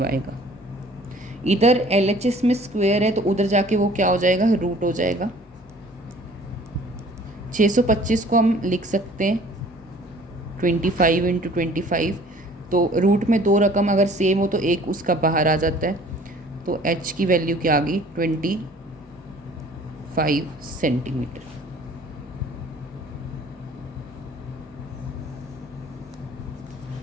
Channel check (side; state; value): both; normal; correlation 0.52